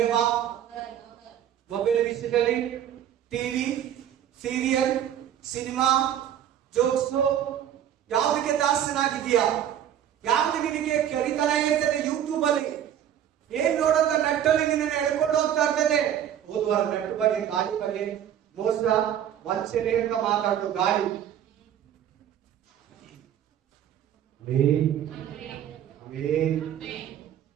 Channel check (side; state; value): left; quieter; 10.2 dB